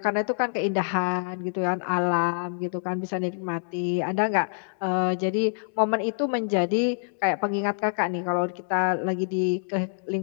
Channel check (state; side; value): silent; right; digital silence